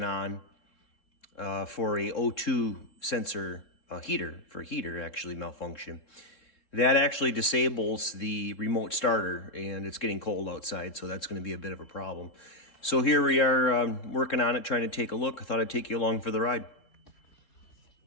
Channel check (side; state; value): right; late; 3.7 ms